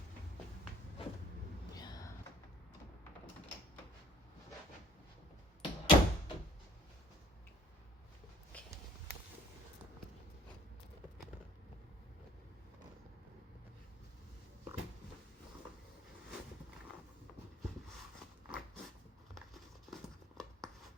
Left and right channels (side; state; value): both; normal; correlation 0.56